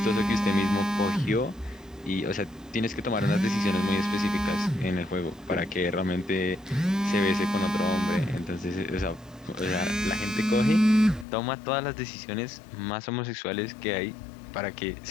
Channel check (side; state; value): right; drops out; at 11.2 s